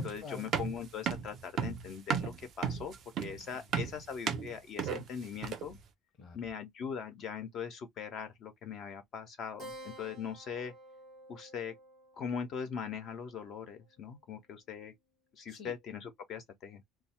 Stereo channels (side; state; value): both; normal; correlation 0.45